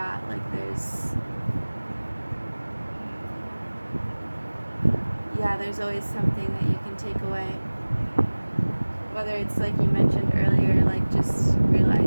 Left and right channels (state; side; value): inverted; both; correlation -1.00